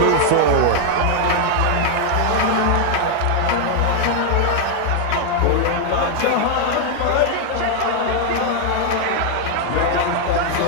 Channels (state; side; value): different; both; correlation 0.00